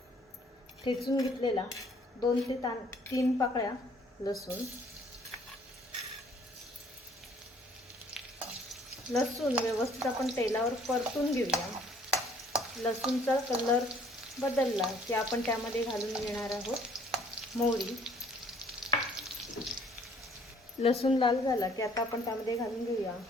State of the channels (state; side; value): normal; both; correlation 0.59